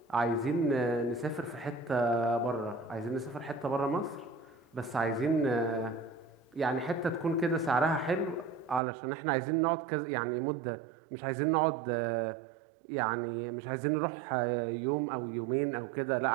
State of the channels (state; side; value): drops out; left; at 8.8 s